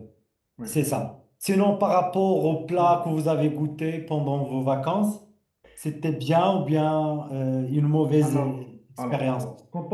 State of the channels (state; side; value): identical; both; correlation 1.00